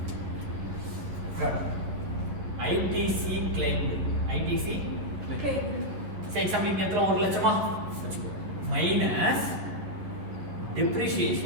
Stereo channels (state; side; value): late; left; 11 ms